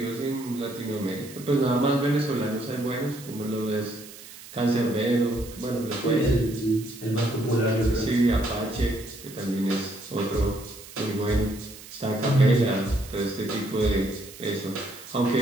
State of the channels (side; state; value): right; noise; hiss, 17 dB below the sound